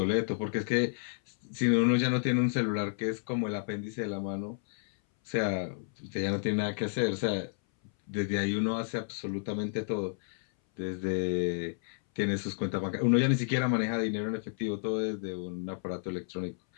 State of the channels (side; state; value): right; silent; 57 dB below the other